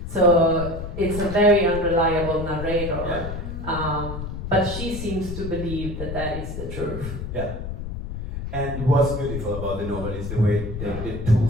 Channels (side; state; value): left; noise; rumble, 7 dB below the sound